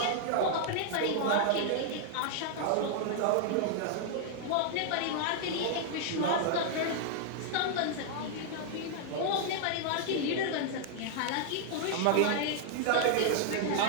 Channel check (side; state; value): both; different; correlation -0.01